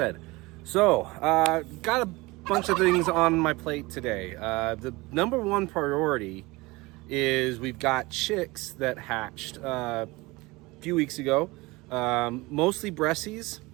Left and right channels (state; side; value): quieter; left; 22.5 dB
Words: So, got a bunch of things on my plate today. The number one priority is we've got chicks that hatched a few weeks ago, mostly Bressies